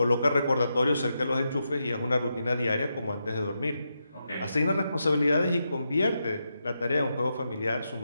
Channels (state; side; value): inverted; both; correlation -0.85